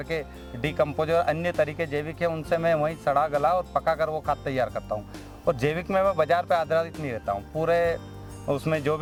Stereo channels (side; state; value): both; identical; correlation 1.00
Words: डिकम्पोज और अन्य तरीके जैविक है उनसे मैं वहीं सड़ा गला और पका कर वो खाद तैयार करता हूँ। और जैविक में मैं बाजार पे आधारित नहीं रहता हूँ, पूरे उसमें जो